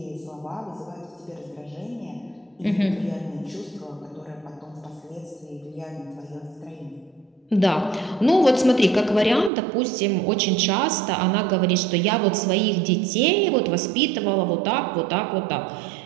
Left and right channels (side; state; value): left; drops out; at 9.5 s